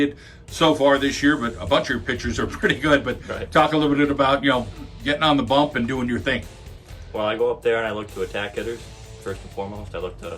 so far this year, but a bunch of your pitchers are pretty good. But Right. Talk a little bit about, getting on the bump and doing your thing. Well, I go up there and I look to attack hitters, first and foremost. I look to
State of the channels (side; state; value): both; identical; correlation 1.00